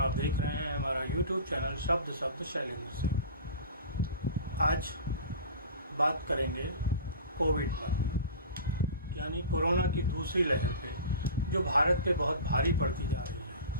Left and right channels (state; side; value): inverted; both; correlation -0.35